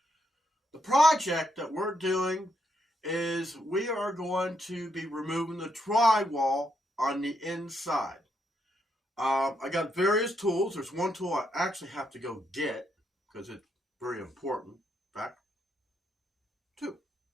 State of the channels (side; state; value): both; normal; correlation 0.78